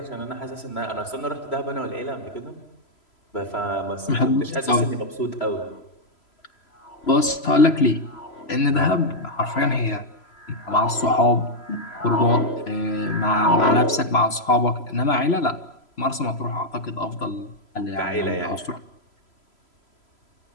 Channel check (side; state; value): right; late; 3.0 ms